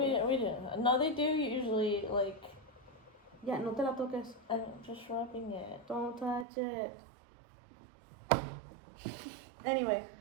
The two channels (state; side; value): drops out; left; at 6.5 s